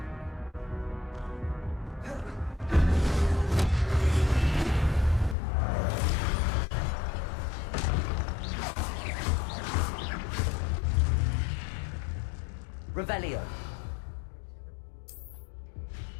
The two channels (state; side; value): drops out; right; at 5.4 s